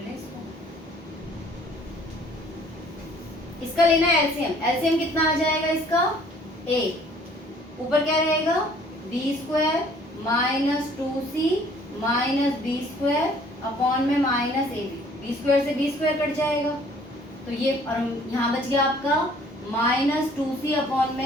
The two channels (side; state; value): both; normal; correlation 0.57